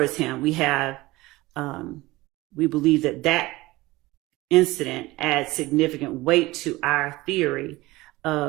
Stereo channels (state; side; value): quieter; left; 19.8 dB